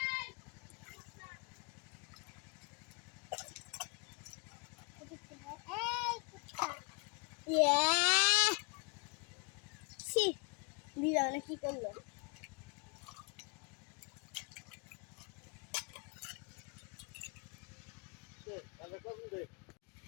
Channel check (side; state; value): right; quieter; 30.4 dB